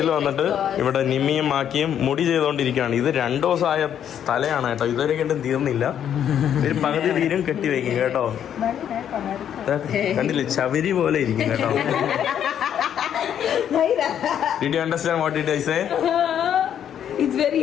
വന്നിട്ട് ഇവിടെ നിമ്മിയും മാക്കിയും മുടി ചെയ്തുകൊണ്ടിരിക്കുകയാണ്. ഇത് 2 ദിവസമായ തലയാണ് കേട്ടോ. ഇതുവരെ കണ്ടും തീർന്നില്ല. ഒരു പകുതി തീരും കെട്ടി വയ്ക്കും കേട്ടോ. കണ്ടില്ലേ, ചവരി പോലെ ഇരിക്കും കേട്ടോ. Did you understand what did I say? It's very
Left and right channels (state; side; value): quieter; right; 9.4 dB